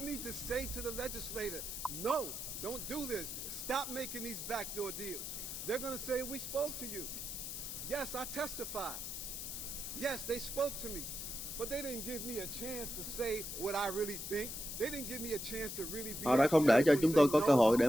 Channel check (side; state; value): left; noise; hiss, 6 dB below the sound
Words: need to say to the legislator, no, don't do this. Stop making these backdoor deals. They're going to say, we spoke to you. Yes, I testified. Yes, they spoke to me. But they didn't give me a chance to say what I really think. They didn't give me a chance to really be. Họ đã không để cho chúng tôi có cơ hội để